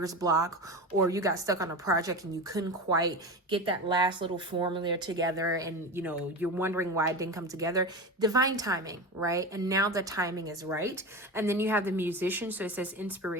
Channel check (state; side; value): normal; both; correlation 0.25